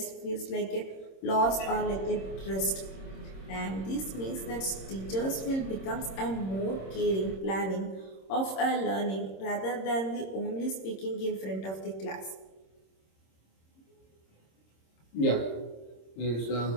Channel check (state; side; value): late; right; 26 ms